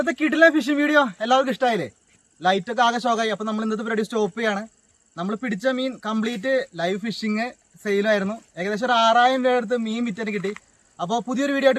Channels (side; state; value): both; identical; correlation 1.00